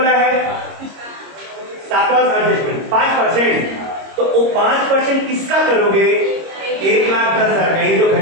है? सातवां एडजस्टमेंट 5%। तो वो 5% किसका करोगे? 1,10,000 का। ये जो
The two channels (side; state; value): left; late; 26 ms